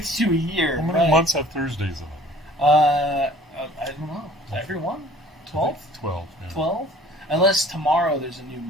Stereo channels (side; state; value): both; normal; correlation 0.50